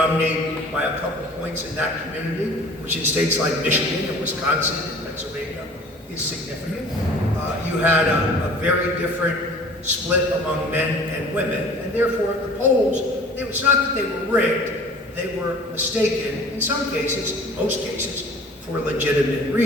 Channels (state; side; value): normal; both; correlation 0.47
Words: by a couple points in that community, which in states like Michigan and Wisconsin and Pennsylvania is significant. You had a very different split among men and women, and therefore the polls, it's not that they were rigged, they were mistaken, in some cases, most cases, for legitimate